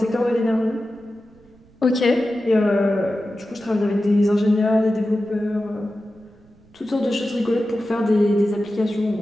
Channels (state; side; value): noise; right; rumble, 29 dB below the sound